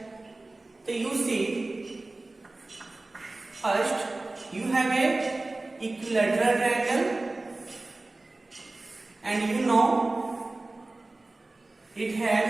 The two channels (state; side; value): quieter; left; 3.0 dB